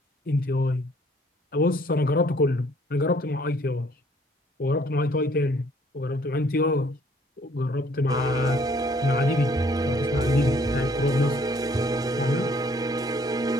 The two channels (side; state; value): both; normal; correlation 0.61